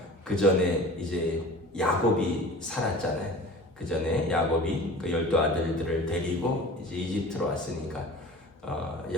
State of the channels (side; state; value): both; normal; correlation 0.39